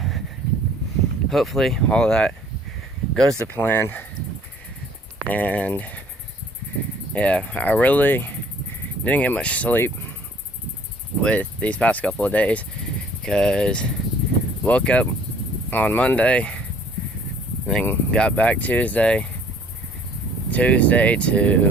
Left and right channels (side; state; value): both; normal; correlation 0.56